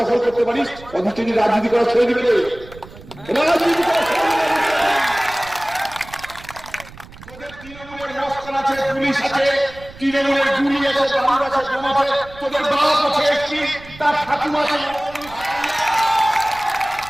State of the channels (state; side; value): noise; right; rumble, 19 dB below the sound